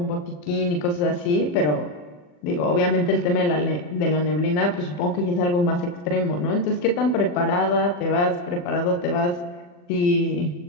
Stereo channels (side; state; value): right; late; 40 ms